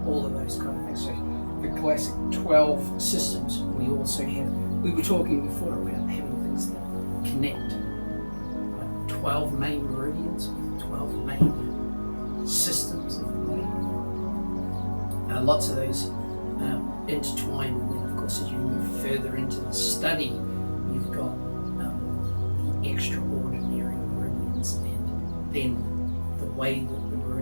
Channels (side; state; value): both; inverted; correlation -1.00